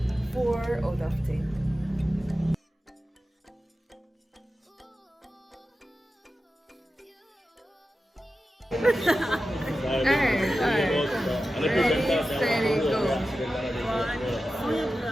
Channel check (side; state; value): both; normal; correlation 0.93